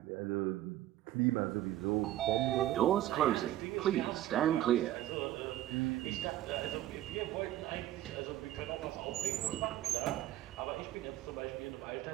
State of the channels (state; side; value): quieter; left; 13.7 dB